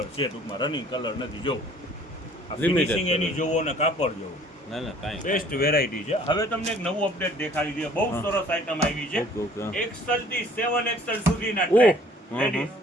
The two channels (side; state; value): both; normal; correlation 0.55